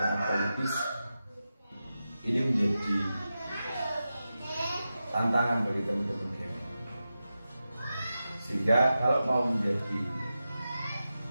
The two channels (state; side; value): inverted; both; correlation -0.92